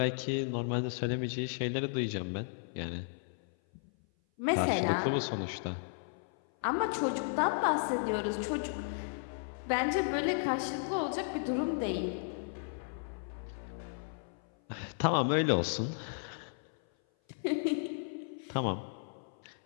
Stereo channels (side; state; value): right; silent; 55 dB below the other